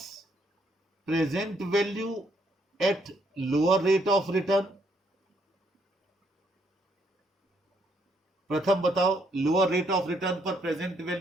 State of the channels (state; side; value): normal; both; correlation 0.71